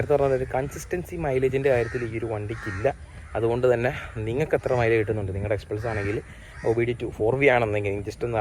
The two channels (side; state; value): both; identical; correlation 1.00